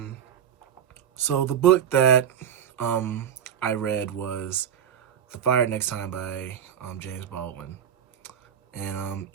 So the book that I read was The Fire Next Time by James Baldwin. And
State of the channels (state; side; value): quieter; left; 9.0 dB